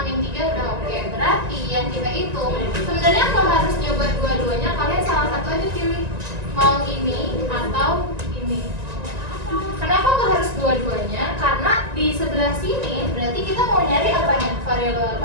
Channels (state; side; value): late; left; 1.9 ms